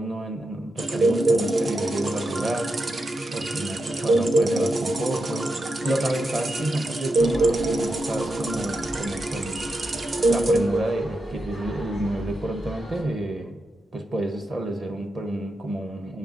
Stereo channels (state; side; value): normal; both; correlation 0.87